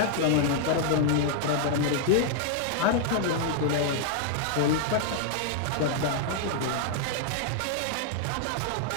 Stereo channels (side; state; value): both; different; correlation 0.00